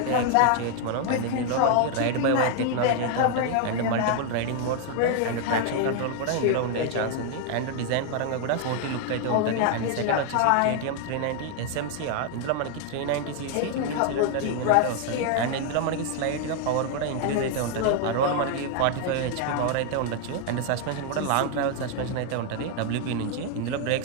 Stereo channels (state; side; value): different; both; correlation 0.00